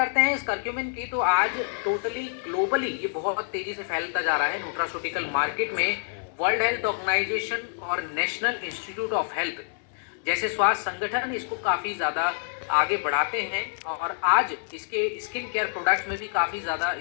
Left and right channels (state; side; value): silent; right; 60 dB below the other